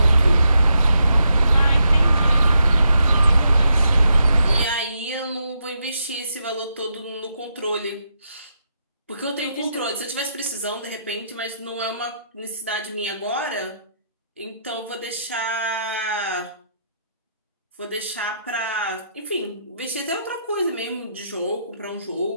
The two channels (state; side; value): inverted; both; correlation -0.80